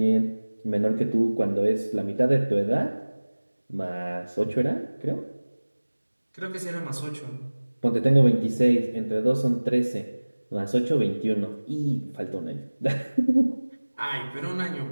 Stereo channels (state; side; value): inverted; both; correlation -1.00